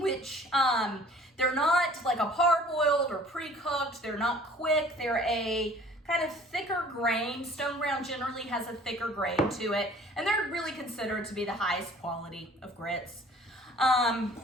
they're not like a parboiled or pre-cooked. They're not quick. They're a kind of thicker grain. Stone ground generally has a thicker grain to it, and they're really considered to be the highest quality of grits.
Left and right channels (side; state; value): both; normal; correlation 0.51